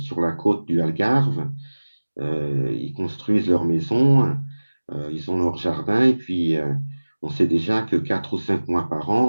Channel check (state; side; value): inverted; both; correlation -1.00